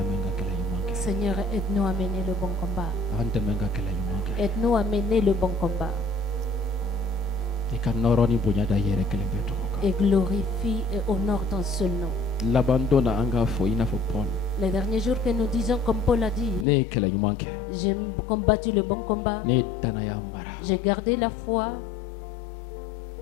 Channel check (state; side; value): drops out; right; at 16.7 s